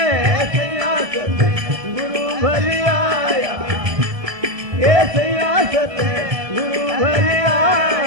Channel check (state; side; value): late; left; 1.2 ms